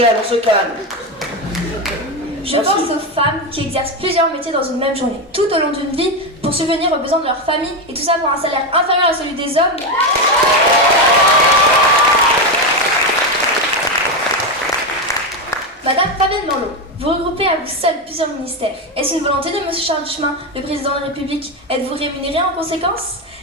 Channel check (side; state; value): both; normal; correlation 0.11